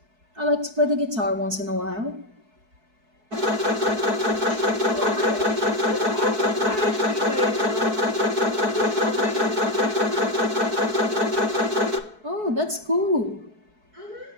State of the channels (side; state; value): left; late; 4.6 ms